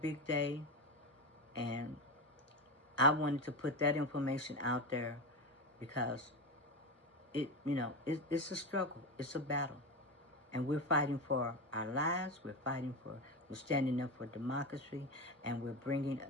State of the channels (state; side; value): normal; both; correlation 0.18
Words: day, and I wanted to put that information out there because it's a struggle, it's a battle, and we're fighting for our lives. We're standing up for democracy, and we're bringing